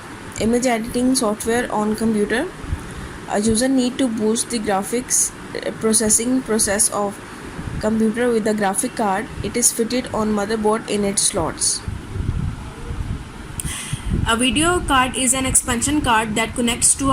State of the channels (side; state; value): both; identical; correlation 1.00